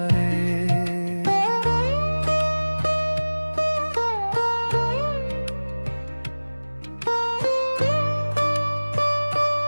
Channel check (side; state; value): both; inverted; correlation -1.00